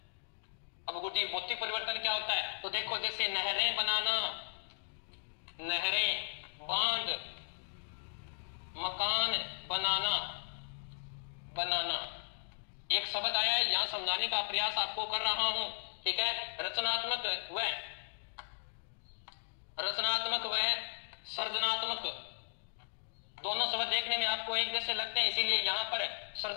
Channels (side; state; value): right; silent; digital silence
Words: अब गुड्डी भौतिक परिवर्तन क्या होता है, तो देखो जैसे नहरें बनाना, नहरें, बांध, मकान बनाना, एक शब्द आया है, यहां समझाने का प्रयास आपको कर रहा हूं, ठीक है। रचनात्मक व सृजनात्मक, दोनों शब्द देखने में आपको एक जैसे लगते हैं, इसीलिए यहां पर